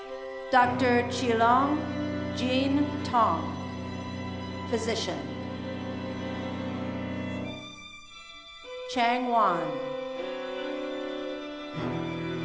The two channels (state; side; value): identical; both; correlation 1.00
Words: Dr. Chilong Jean Tong, physician, Chang Wan,